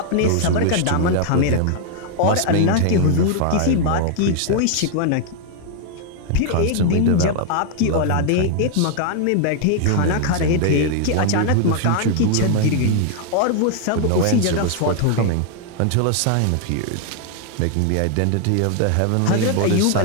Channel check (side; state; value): both; different; correlation 0.00